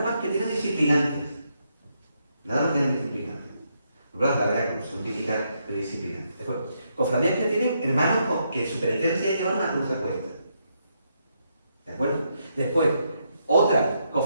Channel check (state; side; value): inverted; both; correlation -0.79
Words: más que tienen disciplinantes. Nada más tienen disciplinantes. La verdad que son típicas de disciplinantes. Después, cofradías que tienen hermanos que su penitencia es llevar una cruz de cuesta. ¿De acuerdo? Después, otras